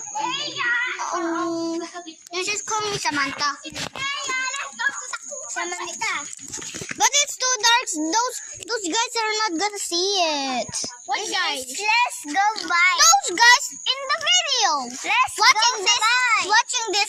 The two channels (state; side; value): identical; both; correlation 1.00